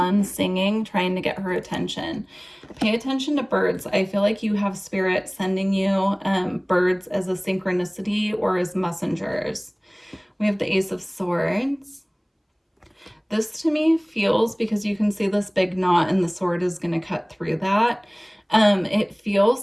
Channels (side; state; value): both; identical; correlation 1.00